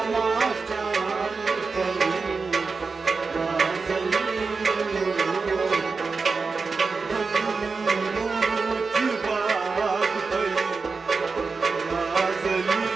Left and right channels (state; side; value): quieter; left; 4.5 dB